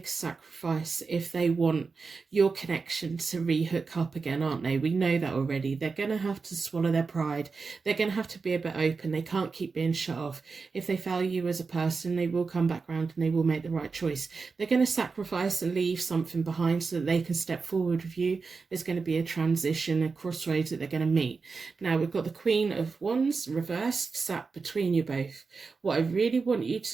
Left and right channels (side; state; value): left; quieter; 4.6 dB